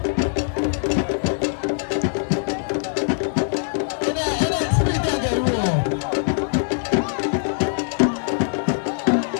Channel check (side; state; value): right; silent; 58 dB below the other